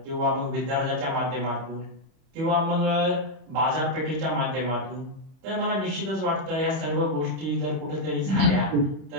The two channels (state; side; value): late; left; 31 ms